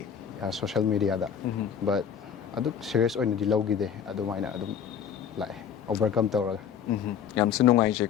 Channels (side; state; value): right; quieter; 8.0 dB